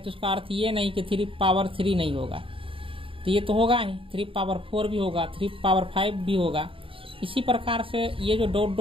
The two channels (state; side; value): late; left; 0.26 ms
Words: इसका अर्थ ये नहीं कि 3 नहीं होगा, तो ये तो होगा ही, 3 भी होगा, 3 भी होगा। इसी प्रकार से ये जो डॉट